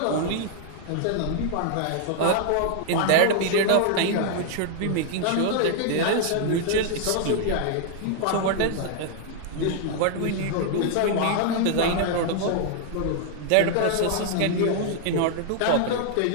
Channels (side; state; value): both; different; correlation -0.01